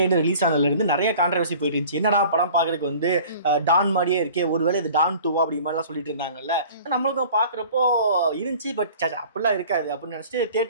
ரிலீஸ் ஆனதுலேருந்து நிறைய கான்ட்ரவர்சி போயிட்டு இருந்துச்சு. என்னடா படம் பார்க்கறதுக்கு வந்து டான் மாதிரியே இருக்கே, ஒருவேளை இது டான் 2 அப்படி மாதிரிலாம் சொல்லிட்டு இருந்தாங்கல்ல. நம்மளுக்கும் பார்க்குறப்போ இருந்துச்சு, பட் அப்படிலாம் இருக்காது அப்படின்னு நினச்சிட்டு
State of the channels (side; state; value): both; inverted; correlation -0.46